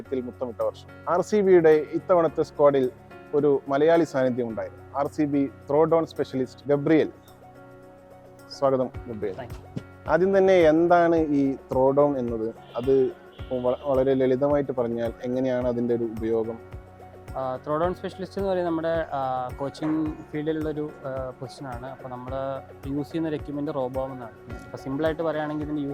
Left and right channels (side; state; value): both; identical; correlation 1.00